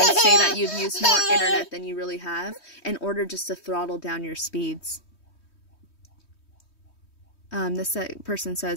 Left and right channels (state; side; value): late; right; 3.2 ms